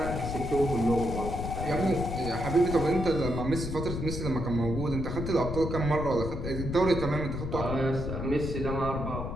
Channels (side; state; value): left; noise; rumble, 5 dB below the sound